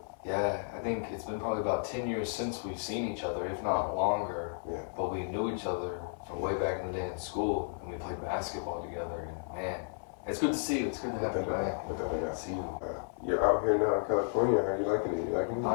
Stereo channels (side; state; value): right; silent; 56 dB below the other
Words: Yeah, I think it's been probably about 10 years since we've seen each other, if not longer. Yeah. But we knew each other from way back in the day in school, and we played basketball together. And man, it's good to see you. It's good to have you back. See you. You're out here now in California. Are you liking it? You liking it?